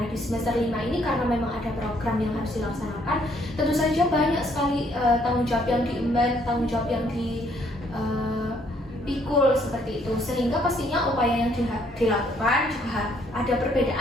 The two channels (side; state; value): both; normal; correlation 0.67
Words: di semester 5 ini karena memang ada program yang harus dilaksanakan, tentu saja banyak sekali tanggung jawab yang diemban, tanggung jawab yang dipikul seperti itu, sehingga pastinya upaya yang dilakukan juga ada